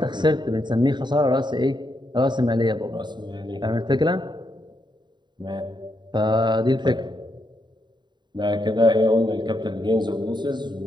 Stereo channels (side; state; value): left; late; 0.22 ms